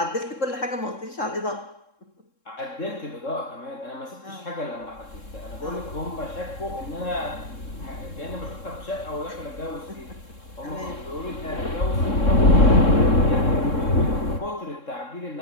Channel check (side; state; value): right; late; 3.7 ms